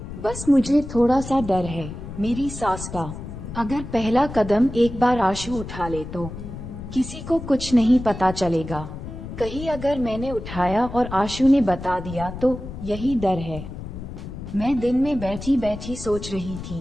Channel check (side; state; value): left; noise; rumble, 10 dB below the sound